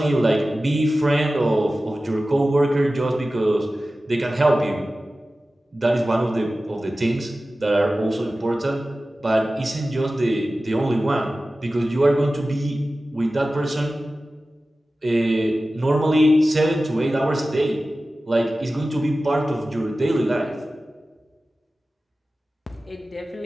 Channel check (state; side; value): normal; both; correlation 0.95